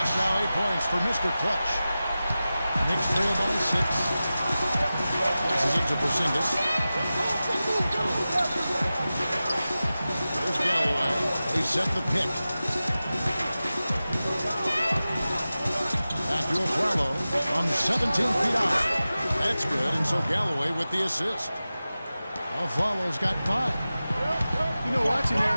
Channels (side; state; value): both; inverted; correlation -0.95